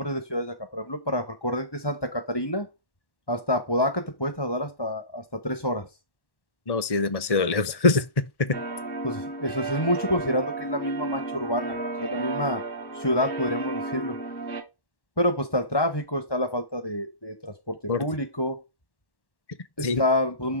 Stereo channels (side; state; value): right; late; 1.1 ms